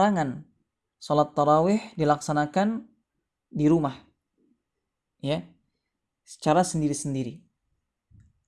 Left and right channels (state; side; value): identical; both; correlation 1.00